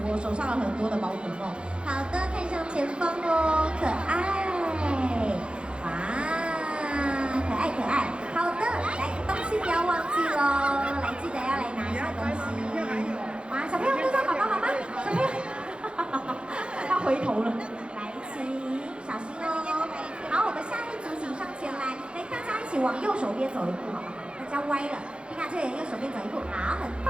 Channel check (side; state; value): left; late; 0.056 ms